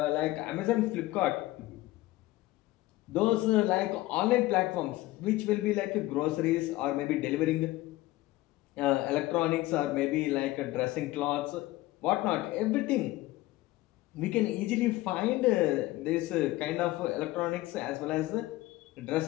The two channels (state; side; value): quieter; right; 17.6 dB